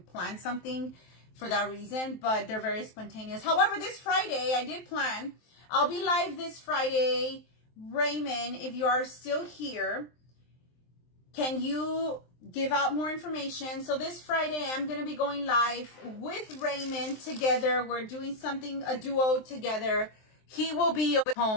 something for that reason, but they're very spontaneous. However, this Friday, I did plan. I'll be live this Friday. Raymond, if you are still here, can you give out more information? So this Friday, I'm going to be going live with Raymond together. We're doing something, a duo together. He will be at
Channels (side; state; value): right; late; 23 ms